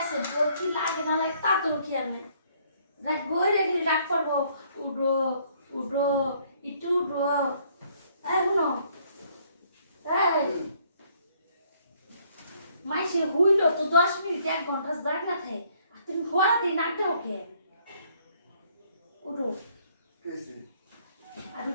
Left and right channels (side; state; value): both; inverted; correlation -0.65